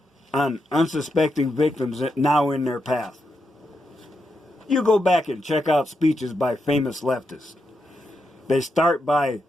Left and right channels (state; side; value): normal; both; correlation 0.84